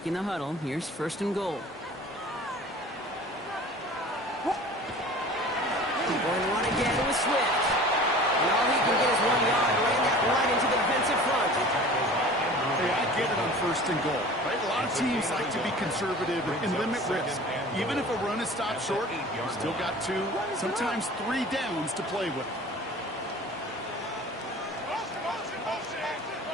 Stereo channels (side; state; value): both; normal; correlation 0.42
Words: the huddle, here's 1st and goal. Going one again with Swift. And all he can get is 1 yard, ran that right into the defensive front. Hey, I get it on 1st and goal, right? A lot of teams like to be conservative and limit risk. Even if a run is stopped short, you still got 2, sometimes 3 downs to play with.